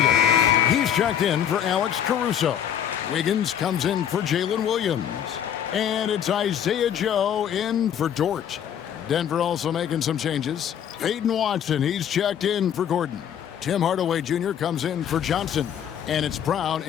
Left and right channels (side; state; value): right; quieter; 9.4 dB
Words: He's checked in for Alex Caruso. Wiggins comes in for Jalen Williams. And it's Isaiah Joe in for Dort. Denver also making some changes. Peyton Watson, he's checked in for Gordon. Tim Hardaway Jr. comes in for Johnson. And it's Brown